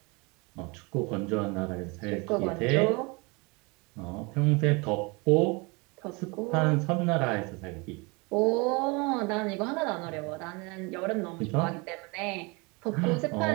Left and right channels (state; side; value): quieter; left; 28.2 dB